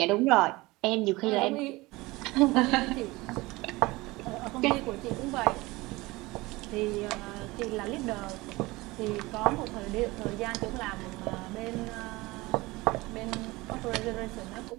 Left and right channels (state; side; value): quieter; left; 21.5 dB